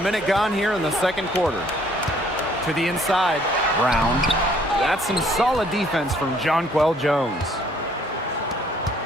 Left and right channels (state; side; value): normal; both; correlation 0.62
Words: minute gone here in the second quarter. To the inside, Brown. That's some solid defense from Jonquel Jones.